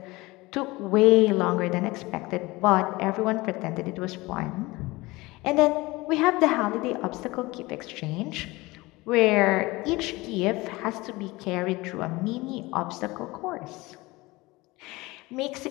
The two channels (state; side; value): quieter; right; 21.6 dB